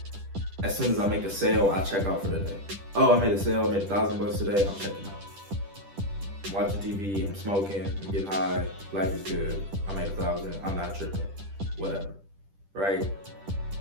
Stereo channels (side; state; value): left; late; 10 ms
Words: soon as I make a sale, I check out for the day. Oh, I made a sale, I made $1,000 today, I'm checking out. I'm watching TV, I'm smoking, I'm getting high, life is good, I made $1,000, I'm not tripping, whatever. Right?